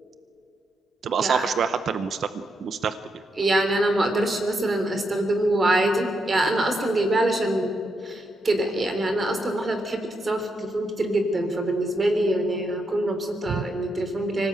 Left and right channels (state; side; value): normal; both; correlation 0.81